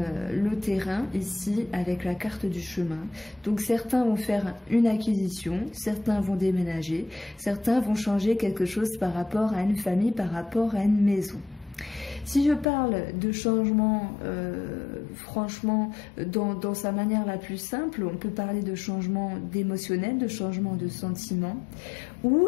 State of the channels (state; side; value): drops out; right; at 12.7 s